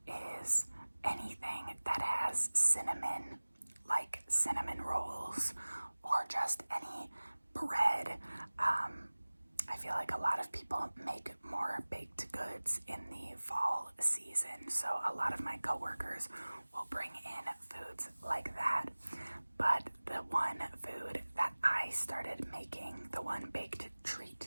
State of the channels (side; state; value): both; inverted; correlation -1.00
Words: people make more baked goods in the fall season. So a lot of my coworkers will bring in foods like that. But the one food that I started making, the one baked treat